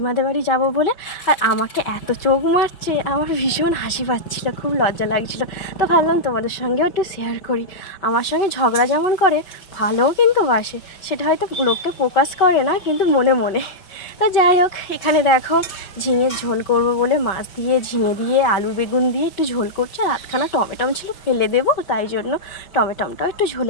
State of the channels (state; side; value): late; right; 5.4 ms